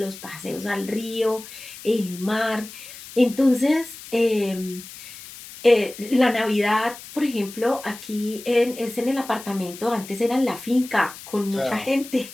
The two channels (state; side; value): noise; left; hiss, 15 dB below the sound